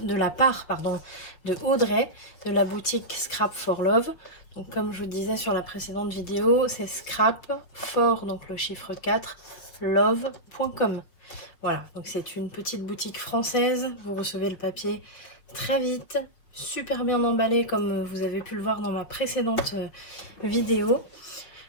part de Audrey de la boutique Scrap for Love. Donc comme je vous disais sur la précédente vidéo, c'est scrap for, donc le chiffre 4, love.com. Voilà, donc c'est une petite boutique française. Vous recevez le papier très vite, super bien emballé comme vous avez pu le voir dans ma précédente vidéo.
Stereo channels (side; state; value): right; late; 6.1 ms